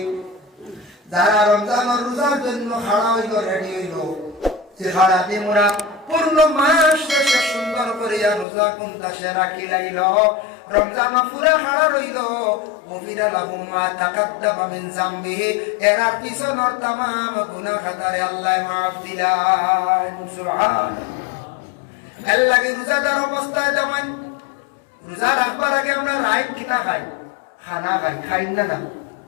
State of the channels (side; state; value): right; drops out; at 8.5 s